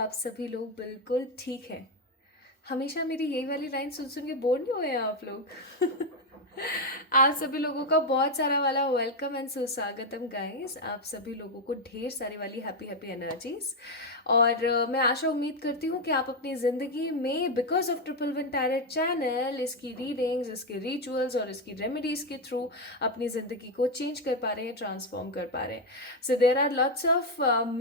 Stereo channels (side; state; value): both; normal; correlation 0.05